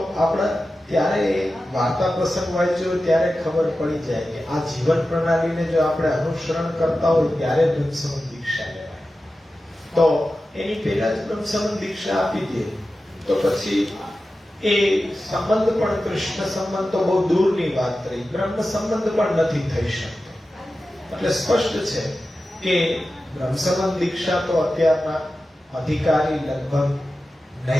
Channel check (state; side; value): normal; both; correlation 0.93